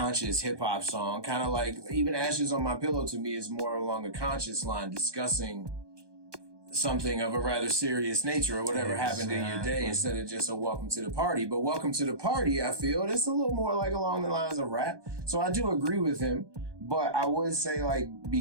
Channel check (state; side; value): late; left; 1.2 ms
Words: hip-hop song, kind of like, even Ashes on My Pillow to me is more along a conscious line, discussing something of a rather serious nature or whatever happened in your day, instead of just a welcome to the party. But welcome to the party, I feel, it's a little more like along the lines of rap. So I do agree with him, but I would say, like,